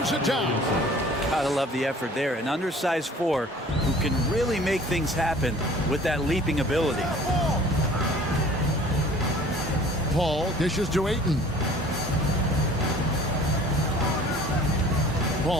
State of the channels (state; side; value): normal; both; correlation 0.49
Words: it down. Gotta love the effort there. An undersized 4 who can really make things happen with that leaping ability. Paul dishes to Ayton.